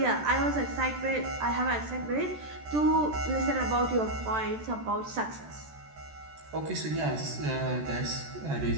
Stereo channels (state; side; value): late; left; 14 ms